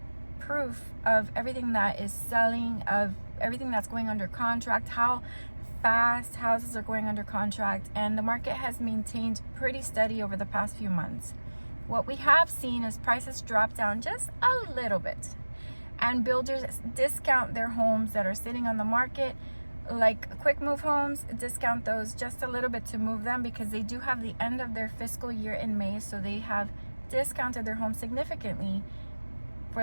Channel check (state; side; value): inverted; both; correlation -1.00